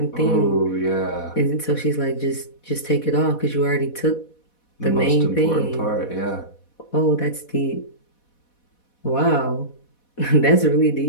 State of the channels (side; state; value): right; late; 4.1 ms